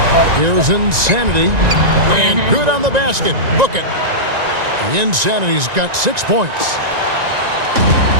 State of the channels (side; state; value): left; late; 1.9 ms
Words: Here's Insanity. And good on the basket. Book it. The Insanity's got 6 points.